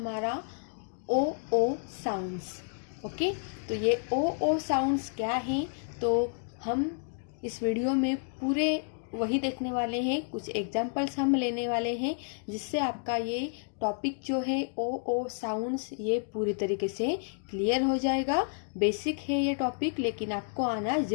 ओ ओ साउंड्स। ओके, तो ये ओ ओ साउंड्स क्या हैं, तो हम इस वीडियो में पूरे वही देखने वाले हैं। कुछ एग्जाम्पल्स हम लेने वाले हैं जिससे आपका ये टॉपिक जो है ओ ओ साउंड्स ये पूरी तरीके से क्लियर हो जाएगा। बेसिक है ये टॉपिक, लेकिन आपको आना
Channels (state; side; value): silent; right; 57 dB below the other